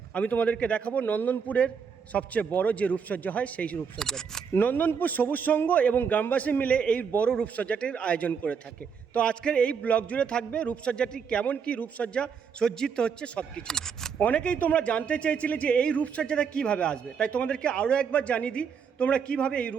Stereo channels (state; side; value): quieter; left; 6.5 dB